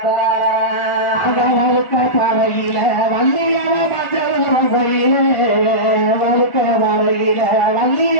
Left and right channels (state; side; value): late; right; 1.4 ms